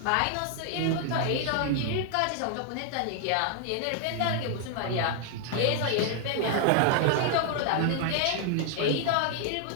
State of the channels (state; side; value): different; both; correlation 0.00